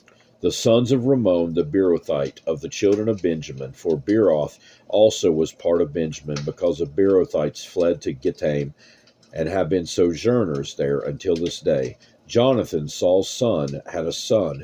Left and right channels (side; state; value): both; identical; correlation 1.00